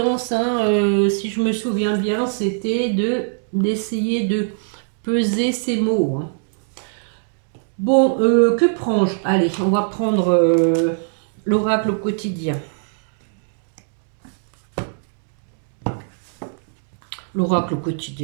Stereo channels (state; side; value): silent; left; digital silence